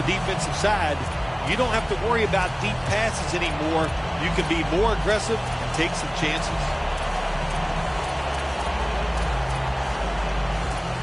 defensive side. You don't have to worry about deep passes anymore. You can be more aggressive and take some chances.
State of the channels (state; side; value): identical; both; correlation 1.00